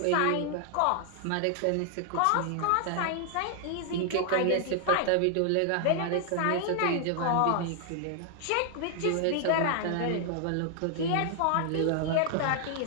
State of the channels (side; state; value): both; different; correlation 0.00